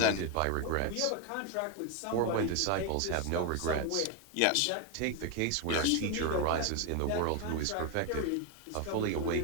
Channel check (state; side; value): different; both; correlation 0.02